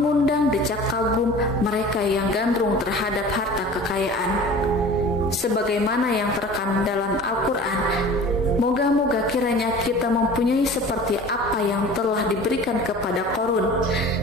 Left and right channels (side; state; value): both; normal; correlation 0.41